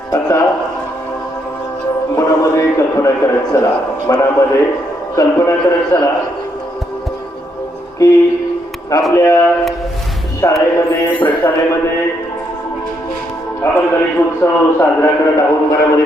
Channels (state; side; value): normal; both; correlation 0.76